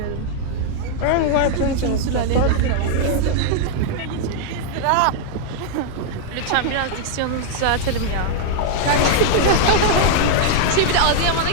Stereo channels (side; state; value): both; different; correlation -0.01